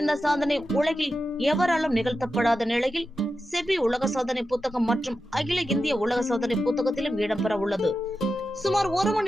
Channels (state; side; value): normal; both; correlation 0.90